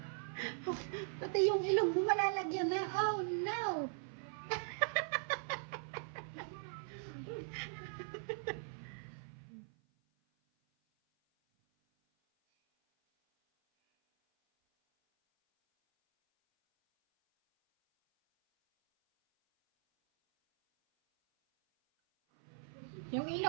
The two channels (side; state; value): left; silent; 51 dB below the other